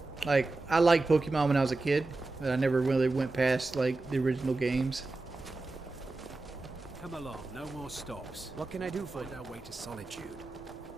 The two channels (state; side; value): quieter; left; 3.3 dB